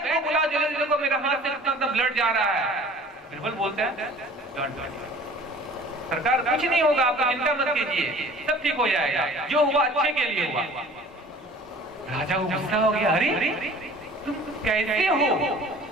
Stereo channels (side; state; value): both; normal; correlation 0.47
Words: को बुलाओ जल्दी, देखो मेरा हाथ से इतना ब्लड जा रहा है। बिरबल बोलते हैं सरकार कुछ नहीं होगा, आप चिंता मत कीजिए, सब ठीक हो जाएगा, जो हुआ अच्छे के लिए हुआ। राजा को गुस्सा हो गया, अरे तुम कैसे हो?